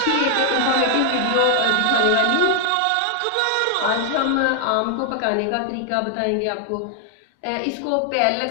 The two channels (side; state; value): both; different; correlation 0.00